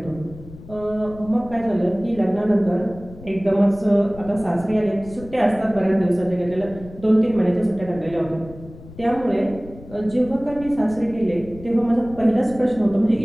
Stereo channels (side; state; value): left; noise; rumble, 17 dB below the sound